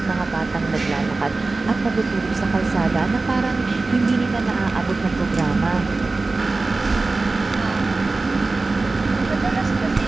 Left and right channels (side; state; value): left; quieter; 3.5 dB